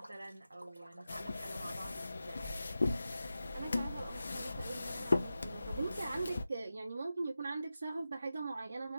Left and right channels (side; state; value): both; inverted; correlation -0.92